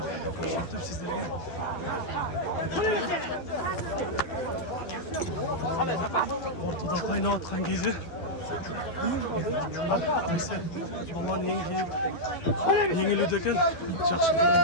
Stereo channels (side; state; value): right; late; 12 ms